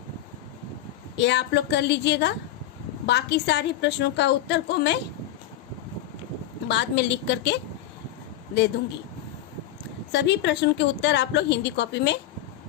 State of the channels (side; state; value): right; quieter; 12.5 dB